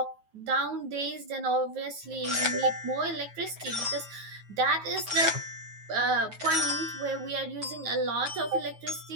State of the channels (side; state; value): left; late; 9.3 ms